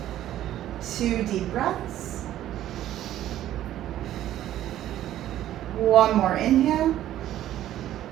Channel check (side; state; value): left; quieter; 12.7 dB